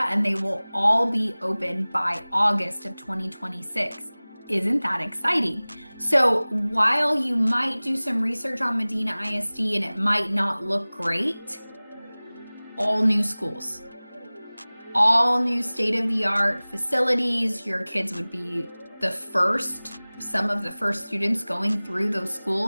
and they will all be open by August of 2026. Isn't that exciting? So while you might do some research on Medina ISD and it might not look great, all new schools, all new state-of-the-art facilities. Your kids would be some of the first students going through those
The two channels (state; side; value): inverted; both; correlation -1.00